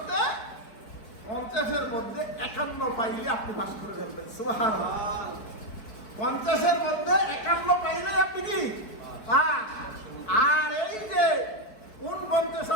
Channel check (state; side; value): late; right; 4.6 ms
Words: 50-এর মধ্যে 51 পাইলে আপনি পাস করে ফেলবেন। সুবহানাল্লাহ। 50-এর মধ্যে 51 পাইলে আপনি কি পাস। আর এই যে 49